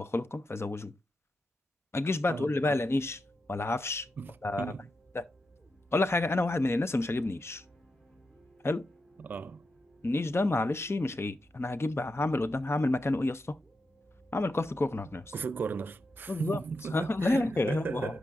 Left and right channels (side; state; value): both; normal; correlation 0.87